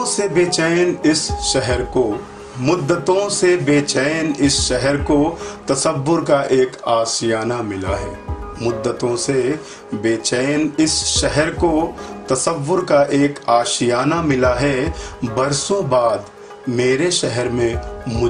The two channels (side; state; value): both; identical; correlation 1.00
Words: से बेचैन इस शहर को, मुद्दतों से बेचैन इस शहर को तसव्वुर का एक आशियाना मिला है। मुद्दतों से बेचैन इस शहर को तसव्वुर का एक आशियाना मिला है। बरसों बाद मेरे शहर में